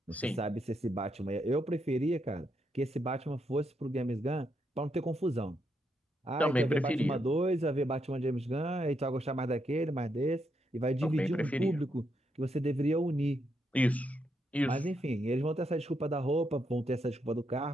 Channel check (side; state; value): both; normal; correlation 0.80